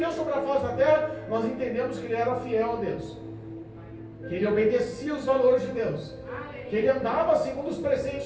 sobre a face da terra, nós entendemos que ele era fiel a Deus, que ele obedecia os valores de Deus, que ele andava segundo os preceitos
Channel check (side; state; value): both; identical; correlation 1.00